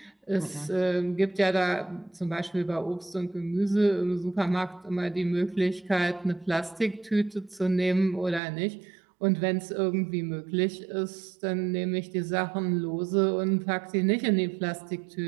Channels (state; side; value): drops out; left; at 8.4 s